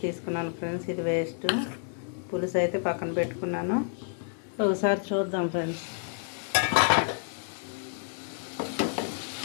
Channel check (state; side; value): silent; right; 58 dB below the other